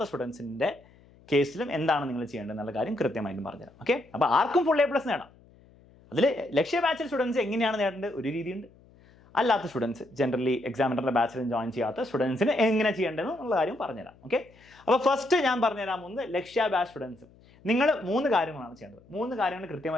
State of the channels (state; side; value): noise; left; hum, 27 dB below the sound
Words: സ്റ്റുഡൻസിന്റെ കേസിലും എന്താണ് നിങ്ങൾ ചെയ്യേണ്ടത് എന്നുള്ള കാര്യം കൃത്യമായിട്ടും പറഞ്ഞുതരാം. ഓക്കെ, അപ്പോൾ ആർക്കും ഫുൾ A+ നേടാം. അതിൽ ലക്ഷ്യ ബാച്ചിൽ സ്റ്റുഡൻസ് എങ്ങനെയാണ് നേടേണ്ടത് ഒരു രീതിയുണ്ട്. അല്ലാത്ത സ്റ്റുഡൻസ്, ജനറലി എക്സാമിനറിന്റെ ബാച്ചിലും ജോയിൻ ചെയ്യാത്ത സ്റ്റുഡൻസിന് എങ്ങനെ ചെയ്യേണ്ടത് എന്നുള്ള കാര്യം പറഞ്ഞുതരാം. ഓക്കെ, അപ്പോൾ ഫസ്റ്റ് ഞാൻ പറഞ്ഞുതരാൻ പോകുന്നത് ലക്ഷ്യ ബാച്ച് സ്റ്റുഡൻസ് നിങ്ങൾ 3 കാര്യങ്ങളാണ് ചെയ്യേണ്ടത്. 3 കാര്യങ്ങൾ